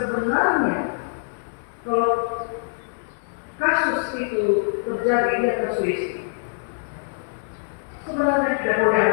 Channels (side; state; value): right; silent; digital silence